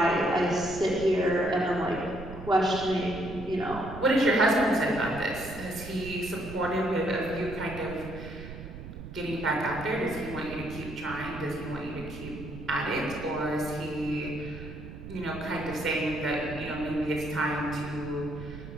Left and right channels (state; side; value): noise; right; rumble, 11 dB below the sound